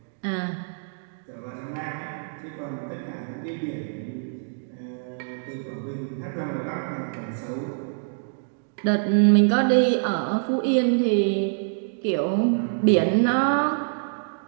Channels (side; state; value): left; silent; digital silence